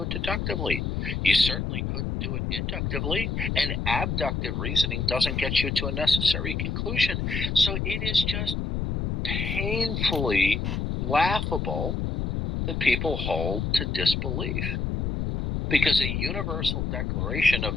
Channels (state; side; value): noise; left; rumble, 1 dB below the sound